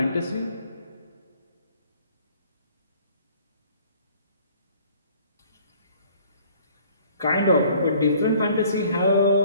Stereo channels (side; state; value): both; inverted; correlation -0.56